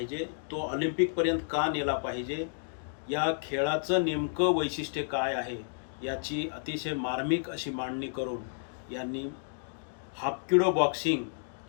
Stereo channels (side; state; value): right; silent; digital silence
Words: तो ऑलिम्पिकपर्यंत का नेला पाहिजे, या खेळाचं नेमकं वैशिष्ट्य काय आहे याची अतिशय मार्मिक अशी मांडणी करून यांनी हाफकिडो बॉक्सिंग